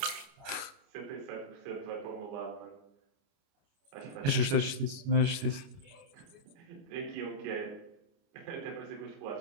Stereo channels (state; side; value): late; left; 29 ms